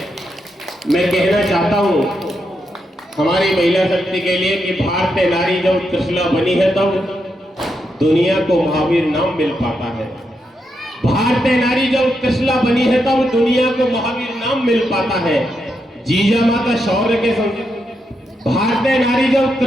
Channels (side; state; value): both; normal; correlation 0.83